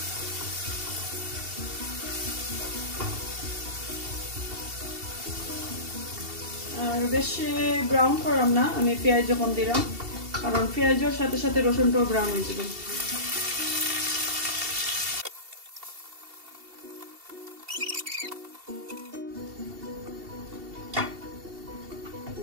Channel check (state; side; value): late; left; 2.7 ms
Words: আর বেশি ব্রাউন করলাম না, আমি পেঁয়াজ যখন দিলাম, কারণ পেঁয়াজের সাথে সাথে রসুনটাও ব্রাউন হয়ে যাবে।